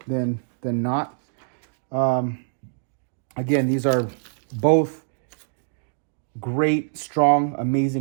than not. Again, these are both great, strong,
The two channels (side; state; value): left; silent; digital silence